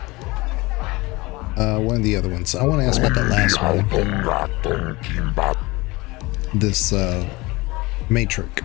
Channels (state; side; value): quieter; right; 22.7 dB